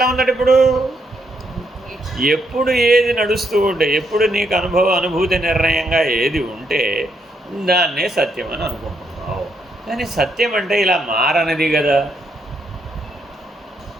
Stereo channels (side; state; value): both; normal; correlation 0.76